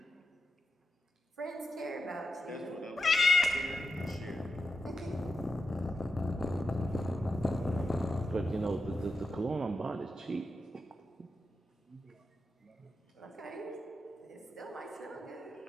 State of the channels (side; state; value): both; normal; correlation 0.87